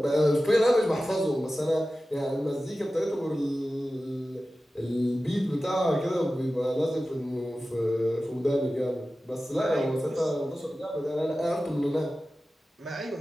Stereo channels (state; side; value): normal; both; correlation 0.95